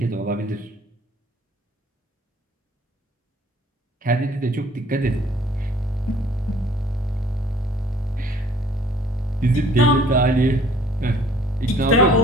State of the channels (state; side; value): normal; both; correlation 0.56